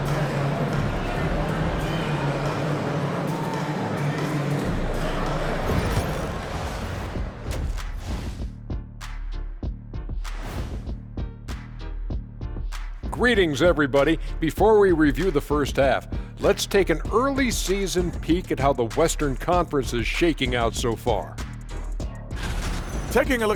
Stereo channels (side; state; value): both; identical; correlation 1.00